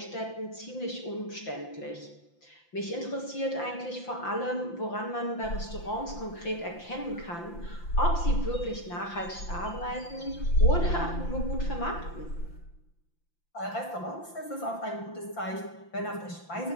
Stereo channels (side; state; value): right; late; 5.8 ms